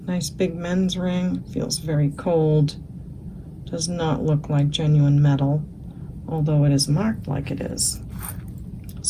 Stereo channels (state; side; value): identical; both; correlation 1.00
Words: Nice big men's ring. Feels very cold. Does not look like genuine metal, although it is marked like it is.